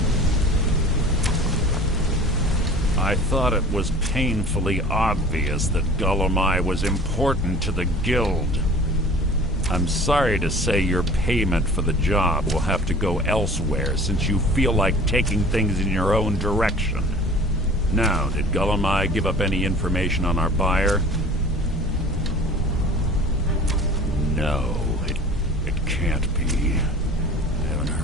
I thought it was painfully obvious that Gullumai was important to the guild. I'm sorry to say your payment for the job will have to go elsewhere since you feel like taking things in your own direction. Now, did Gullumai give up any information on our buyer? No, it can't be. I haven't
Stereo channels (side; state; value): both; normal; correlation 0.44